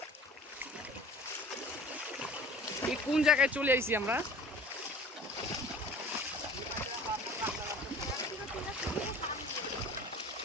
এই কোন জায়গায় চলে আইছি আমরা।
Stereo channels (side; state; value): both; normal; correlation 0.44